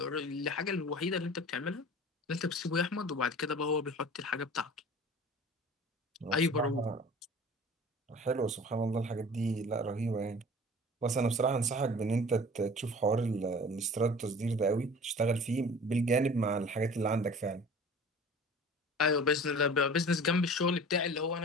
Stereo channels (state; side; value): normal; both; correlation 0.42